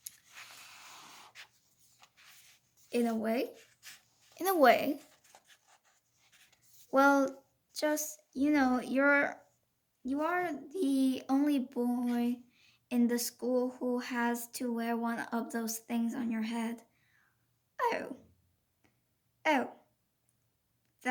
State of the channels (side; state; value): both; identical; correlation 1.00